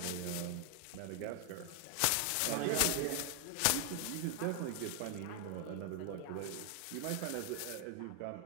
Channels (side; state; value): both; different; correlation 0.00